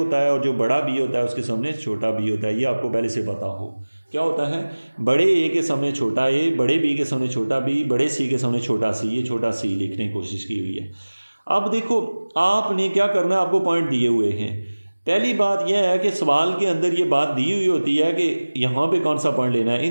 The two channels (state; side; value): inverted; both; correlation -1.00